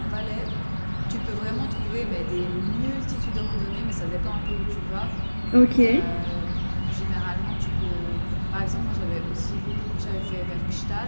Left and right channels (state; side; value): inverted; both; correlation -1.00